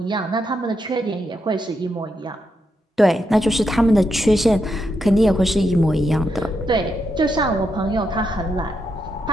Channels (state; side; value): normal; both; correlation 0.82